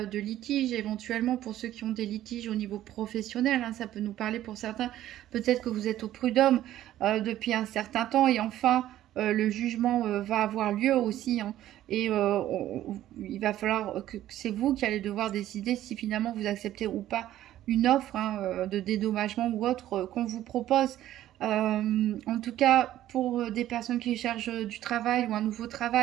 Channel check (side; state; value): left; quieter; 13.2 dB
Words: de litige, éventuellement pour ceux qui ont des litiges au niveau professionnel, hein, ça peut nous parler pour certains, peut-être que vous êtes au prud'homme depuis un certain temps et enfin le jugement va avoir lieu aussi, hein, et il va falloir que c'est vous qui allez devoir décider si finalement vous acceptez ou pas une offre, hein, de dédommagement ou autre qu'on vous propose. En tout cas, pour des personnes qui cherchent du travail ou un nouveau